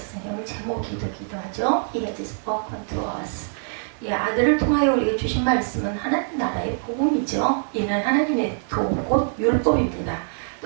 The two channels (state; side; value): silent; left; digital silence